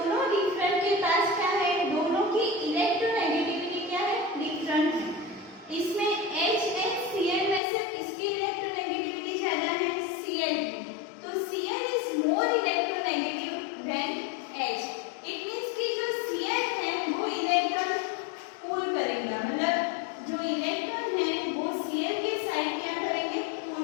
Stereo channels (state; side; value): drops out; right; at 7.6 s